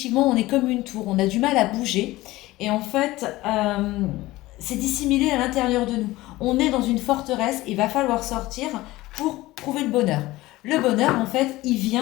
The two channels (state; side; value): quieter; right; 18.3 dB